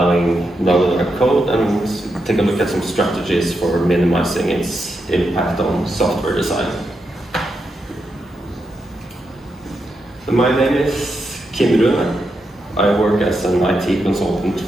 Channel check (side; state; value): both; normal; correlation 0.84